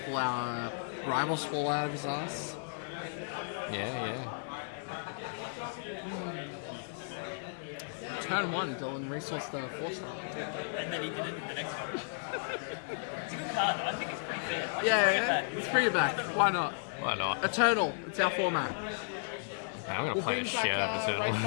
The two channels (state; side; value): silent; right; digital silence